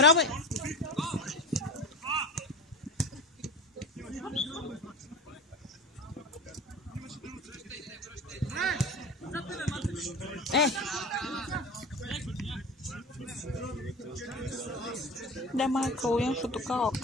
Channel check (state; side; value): normal; both; correlation 0.30